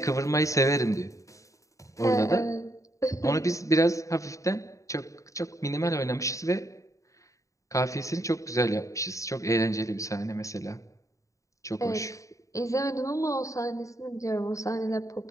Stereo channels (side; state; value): right; late; 0.16 ms